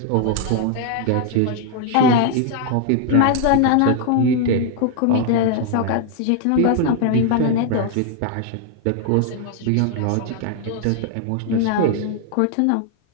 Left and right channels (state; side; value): different; both; correlation 0.00